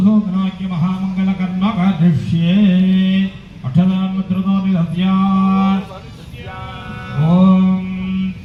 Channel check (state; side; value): identical; both; correlation 1.00